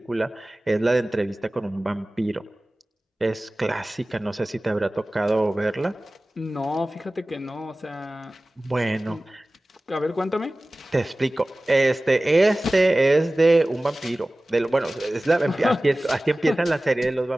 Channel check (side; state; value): both; normal; correlation 0.97